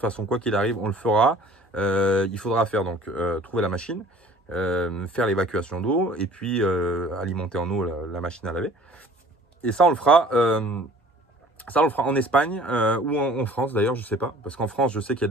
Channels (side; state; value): both; normal; correlation 0.50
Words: quoi qu'il arrive, on le fera. Il faudra faire donc trouver la machine, faire l'évacuation d'eau et puis alimenter en eau la machine à laver. Et ça on le fera, en Espagne ou en France d'ailleurs, je sais pas. Parce qu'en France, je sais qu'il y a